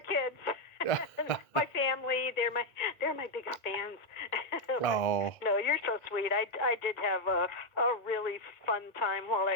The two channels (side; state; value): right; late; 1.7 ms